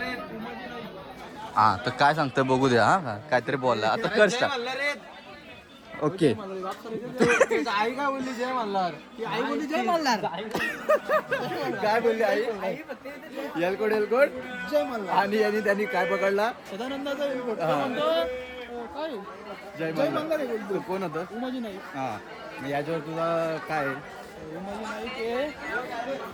हा तर काय सांगतोय बघू द्या. हा काहीतरी बोलला आता कर स्टार्ट. ओके आई काय बोलली जय मल्हार. आई बोलली जय मल्हार. काय बोलली आई. एलकोड एलकोड जय मल्हार. आणि त्यांनी काय पकडला सदानंदाचा हा. म्हणतो काय जय जय मल्हार. मल्हार आहे बोलतो. तो कोण होतं? उमाजी नाईक. हा मग याच्यावर तुझा काय आहे? उमाजी नाईक आहे.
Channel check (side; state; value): both; identical; correlation 1.00